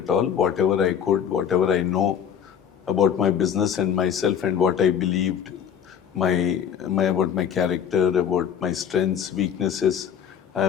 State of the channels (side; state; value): right; quieter; 8.5 dB